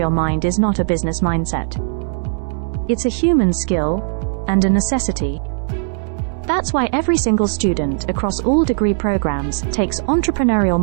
mind is not a business mindset. It's a human skill and a necessity. That's why every single student across all degree programs takes Entrepreneurial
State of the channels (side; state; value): left; silent; digital silence